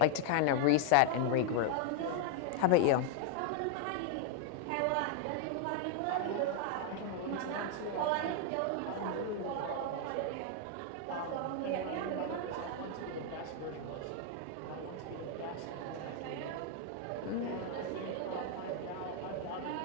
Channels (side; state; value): both; different; correlation 0.00